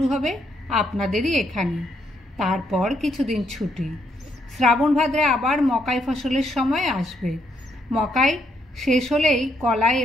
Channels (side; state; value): both; normal; correlation 0.74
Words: হবে আপনাদেরই এখানে। তারপর কিছুদিন ছুটি। শ্রাবণ ভাদ্রে আবার মকাই ফসলের সময় আসবে। মকাই শেষ হলেই কলাই